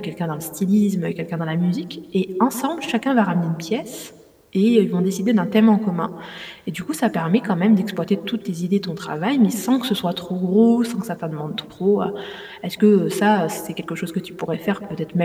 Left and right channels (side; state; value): both; identical; correlation 1.00